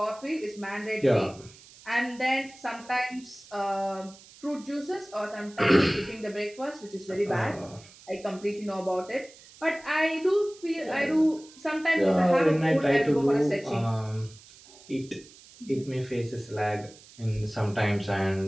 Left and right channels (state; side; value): noise; right; hiss, 22 dB below the sound